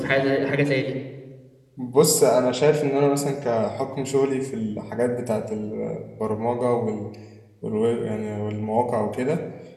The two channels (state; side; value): identical; both; correlation 1.00